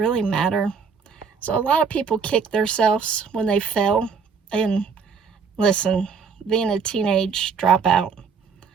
matter? So a lot of people kick themselves when they fail. And listen, being a teenage dropout,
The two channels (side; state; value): left; quieter; 5.8 dB